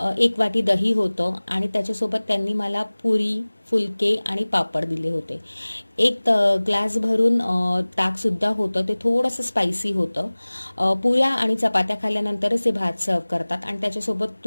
1 वाटी दही होतं, आणि त्याच्यासोबत त्यांनी मला पुरी, फुलके आणि पापड दिले होते. एक ग्लास भरून ताकसुद्धा होतं, ते थोडंसं स्पायसी होतं. पुऱ्या आणि चपात्या खाल्ल्यानंतरच ते भात सर्व करतात आणि त्याच्यासोबत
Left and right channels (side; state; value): both; inverted; correlation -1.00